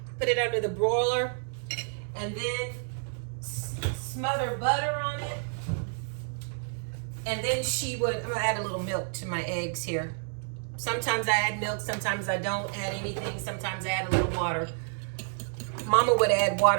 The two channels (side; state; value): left; silent; digital silence